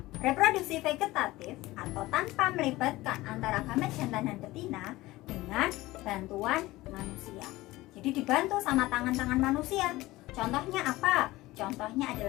reproduksi vegetatif atau tanpa melibatkan antara gamet jantan dan betina dengan bantuan manusia. Jadi dibantu sama tangan-tangan manusia. Contohnya apa? Contohnya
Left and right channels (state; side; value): quieter; right; 18.6 dB